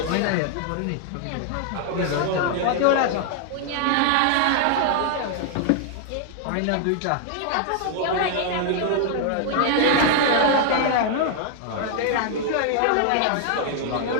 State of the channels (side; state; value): both; different; correlation 0.00